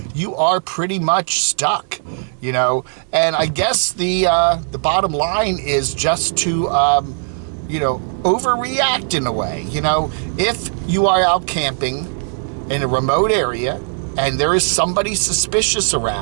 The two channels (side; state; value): left; silent; digital silence